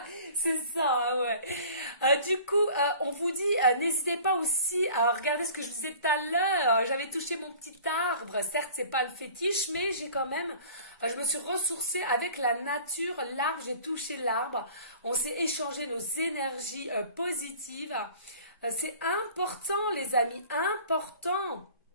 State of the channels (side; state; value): both; inverted; correlation -0.46